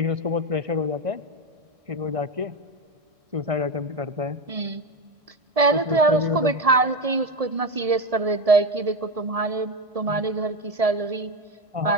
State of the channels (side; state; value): left; late; 1.7 ms